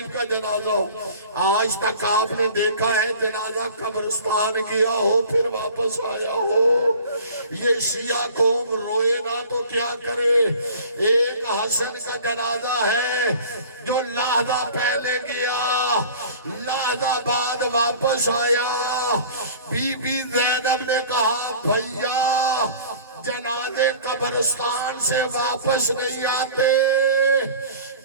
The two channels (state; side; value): inverted; both; correlation -0.44